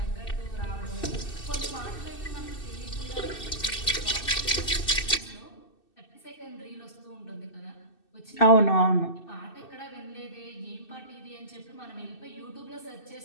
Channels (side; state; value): right; late; 2.6 ms